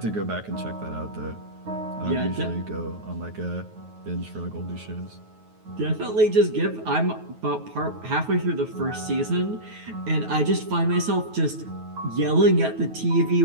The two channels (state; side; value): late; left; 9.3 ms